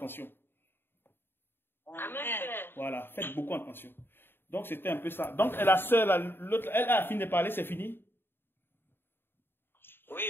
Amen. Voilà, faites beaucoup attention. Donc c'était un peu ça. Donc la sœur, l'autre, elle a fini de parler, c'est fini? Oui,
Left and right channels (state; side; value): late; right; 0.10 ms